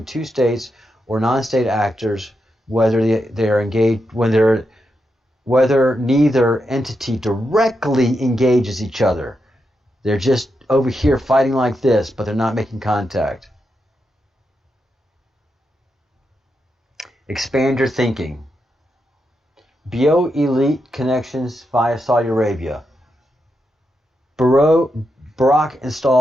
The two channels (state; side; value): normal; both; correlation 0.85